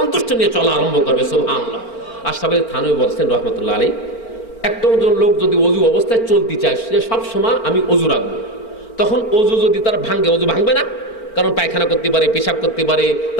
নিয়ে চলা আরম্ভ করবে। সুবহানাল্লাহ। আশরাফ আলী থানভী বলছেন রাহমাতুল্লাহ আলাইহি, একটা লোক যদি অজু অবস্থায় চলতে চায়, সে সবসময় আমি অজু রাখবো, তখন অজু যদি তার ভাঙে, অজু ভাঙবে না, কারণ পায়খানা করতে পারে, পেশাব করতে পারে,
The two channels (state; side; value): late; right; 4.4 ms